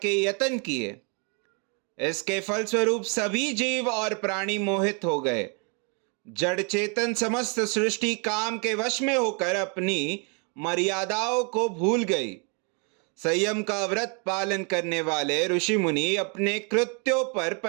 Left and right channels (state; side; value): quieter; left; 36.2 dB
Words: यत्न किए। इसके फलस्वरूप सभी जीव और प्राणी मोहित हो गए। जड़ चेतन समस्त सृष्टि काम के वश में होकर अपनी मर्यादाओं को भूल गई। संयम का व्रत पालन करने वाले ऋषि मुनि अपने कृत्यों पर